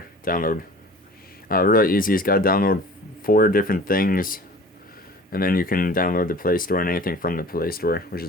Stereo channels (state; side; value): normal; both; correlation 0.43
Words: download. Really easy. It's got to download 4 different things, and then you can download the Play Store and anything from the Play Store, which